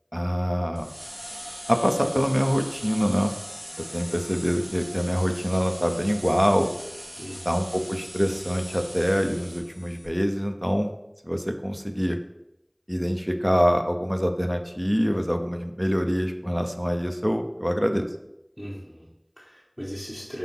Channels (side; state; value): both; identical; correlation 1.00